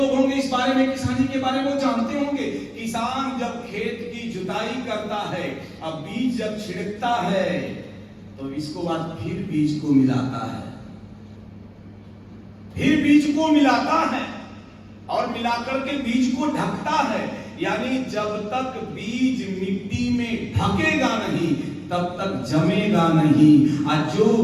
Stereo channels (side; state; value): both; identical; correlation 1.00